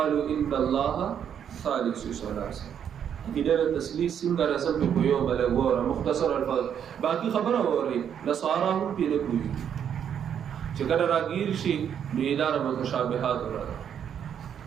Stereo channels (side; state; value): left; quieter; 8.6 dB